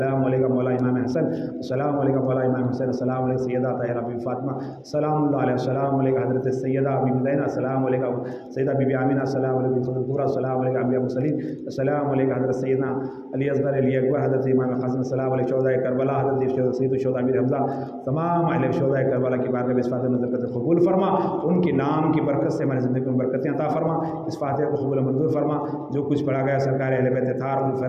علیک مولا امام حسن، السلام علیک مولا امام حسین، السلام علیک سیدہ طاہرہ بی فاطمہ سلام اللہ علیہ، السلام علیک حضرت سیدہ بی زینب، السلام علیک سیدہ بی آمینہ، السلام علیک الکبریٰ، السلام علیک انبیاء مرسلین، السلام علیک حضرت سیدنا علی اصغر علی اکبر، حضرت امام قاسم، السلام علیک شہداء کربلا، حضرت سید الشہداء امیر حمزہ، تمام اہل شہداء کربلا کی بارگاہ میں اس فاتحہ نظر کرتے قبول فرما، ان کے نام کی برکت سے ہماری زندگی میں برکتیں عطا فرما، اس فاتحہ کو قبول منظور فرما، جو کچھ پڑھا گیا سرکار اہل بیت اطہار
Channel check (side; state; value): both; identical; correlation 1.00